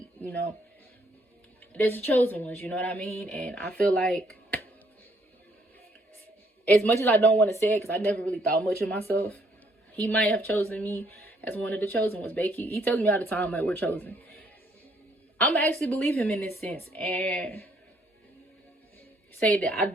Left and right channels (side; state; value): both; normal; correlation 0.68